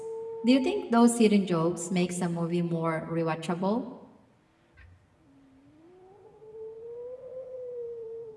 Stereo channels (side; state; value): both; identical; correlation 1.00